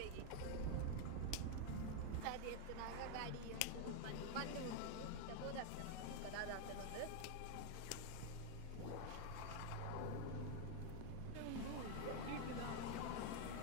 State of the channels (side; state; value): both; different; correlation 0.01